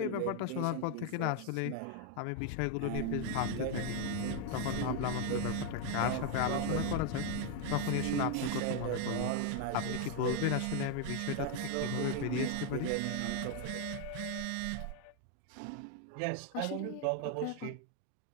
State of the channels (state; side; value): different; both; correlation 0.01